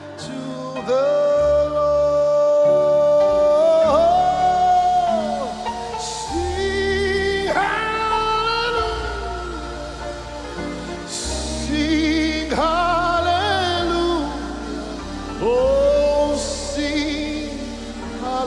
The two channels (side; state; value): both; identical; correlation 1.00